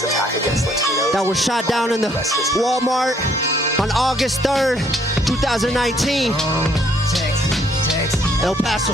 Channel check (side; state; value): both; normal; correlation 0.66